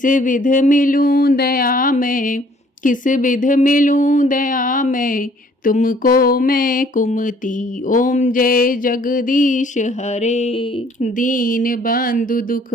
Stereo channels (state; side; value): normal; both; correlation 0.60